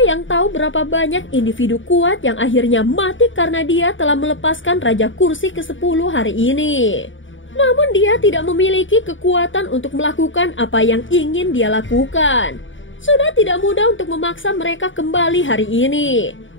yang tahu berapa banyak individu kuat yang akhirnya mati karena dia telah melepaskan Raja Kursi ke-10 hari ini. Namun dia tidak memiliki kekuatan untuk melakukan apa yang ingin dia lakukan. Sudah tidak mudah untuk memaksa mereka kembali hari ini.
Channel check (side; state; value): right; late; 0.56 ms